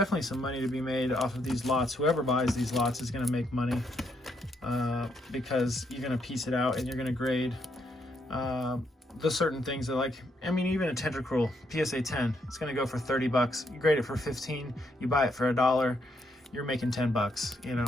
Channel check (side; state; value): both; normal; correlation 0.75